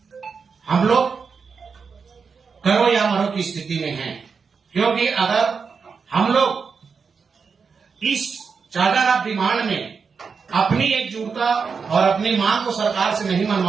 हम लोग करो या मरो की स्थिति में हैं, क्योंकि अगर हम लोग इस चार्टर ऑफ डिमांड में अपनी एकजुटता और अपनी मांग को सरकार से नहीं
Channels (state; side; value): quieter; left; 5.5 dB